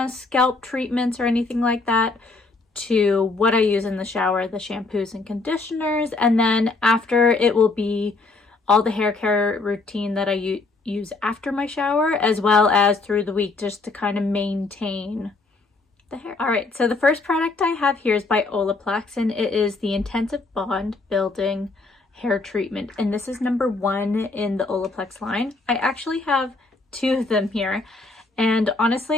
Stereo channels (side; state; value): right; quieter; 3.6 dB